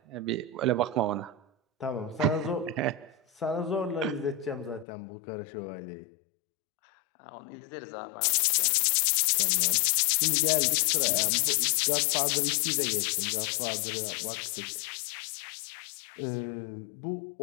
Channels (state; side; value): drops out; right; at 4.9 s